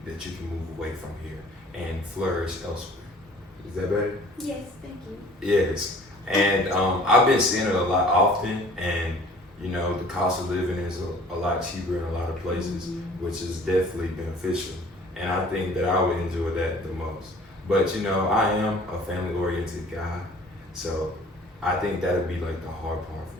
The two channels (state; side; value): normal; both; correlation 0.51